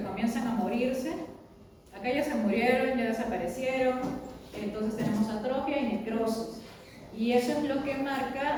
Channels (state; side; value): identical; both; correlation 1.00